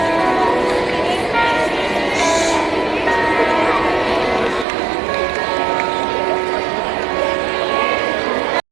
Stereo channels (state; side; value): drops out; left; at 4.7 s